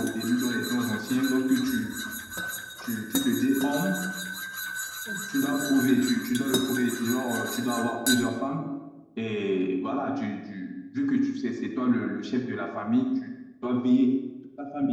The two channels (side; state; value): both; identical; correlation 1.00